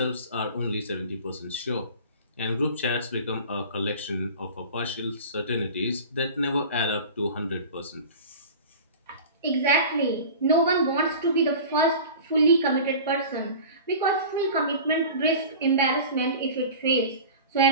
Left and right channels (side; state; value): both; inverted; correlation -0.37